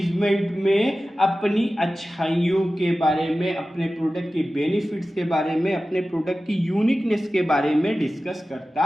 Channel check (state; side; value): normal; both; correlation 0.95